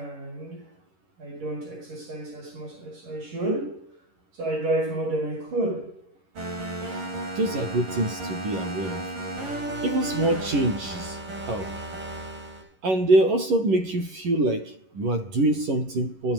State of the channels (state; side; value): late; left; 11 ms